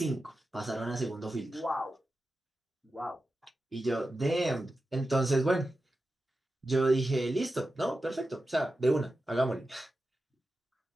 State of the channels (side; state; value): both; normal; correlation 0.92